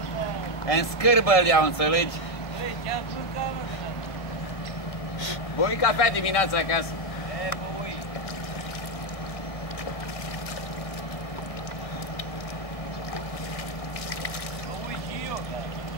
În scârbă îl iau, înțelegi? Băui cafea dimineața acasă. Băui. Băui și eu, da.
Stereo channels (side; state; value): right; late; 1.7 ms